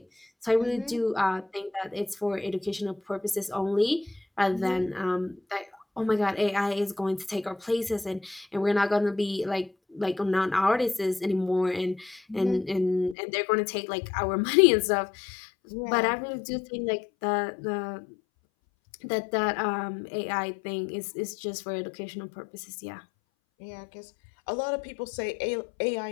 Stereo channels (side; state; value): right; drops out; at 13.2 s